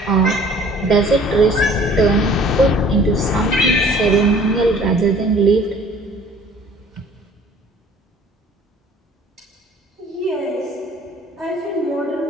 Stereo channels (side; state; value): both; normal; correlation 0.52